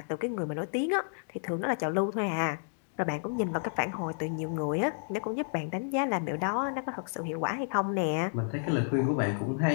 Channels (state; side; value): silent; right; digital silence